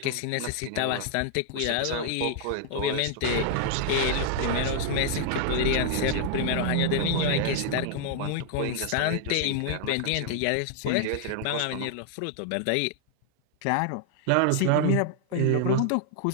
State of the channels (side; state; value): both; different; correlation 0.00